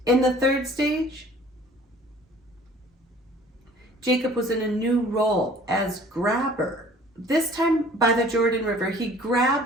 In the third stage, Jacob was in a new role as grabber. This time by the Jordan River, he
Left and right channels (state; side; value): normal; both; correlation 0.51